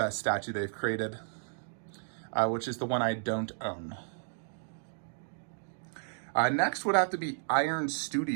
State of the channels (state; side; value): silent; left; digital silence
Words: statue they've created, which is the one I don't own. Next would have to be ARH